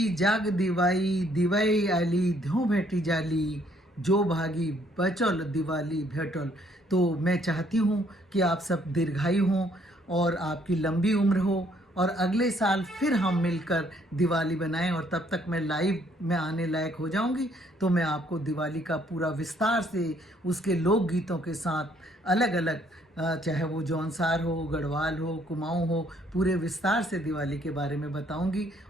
जाग दिवाई, दिवाई आली ध्यो भेटी जाली, जो भागी बचल दिवाली भेटल। तो मैं चाहती हूँ कि आप सब दीर्घायु हों और आपकी लंबी उम्र हो और अगले साल फिर हम मिलकर दिवाली बनाएं, और तब तक मैं लाइव में आने लायक हो जाऊंगी तो मैं आपको दिवाली का पूरा विस्तार से उसके लोकगीतों के साथ अलग अलग, चाहे वो जौनसार हो, गढ़वाल हो, कुमाऊं हो, पूरे विस्तार से दिवाली के बारे में बताऊंगी।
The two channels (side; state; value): both; normal; correlation 0.66